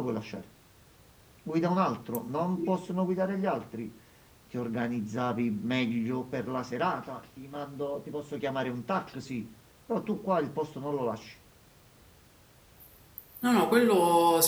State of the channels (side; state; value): both; identical; correlation 1.00